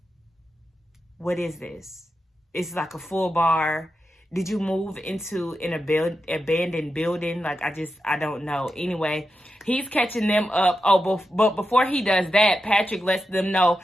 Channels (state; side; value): normal; both; correlation 0.89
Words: What is this? It's like a full bar. Did you move into an abandoned building? Like, I don't know. Anyway, he's catching them up. Oh, but before he does that, Patrick lets them know